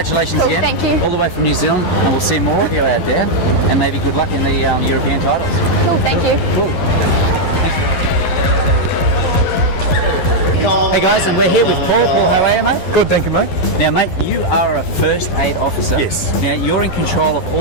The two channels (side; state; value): right; late; 12 ms